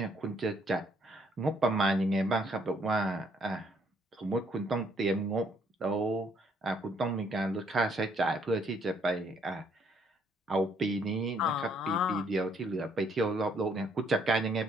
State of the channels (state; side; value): normal; both; correlation 0.67